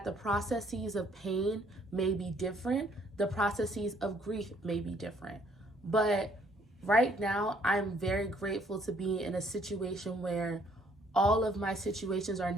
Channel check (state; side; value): normal; both; correlation 0.64